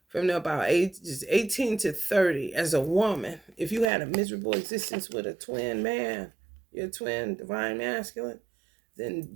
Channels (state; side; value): drops out; left; at 3.9 s